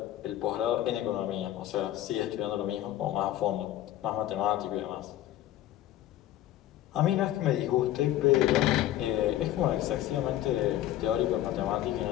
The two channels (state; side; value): quieter; right; 13.5 dB